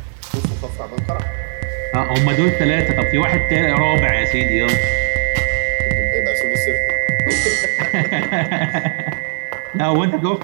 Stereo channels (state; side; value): silent; left; 55 dB below the other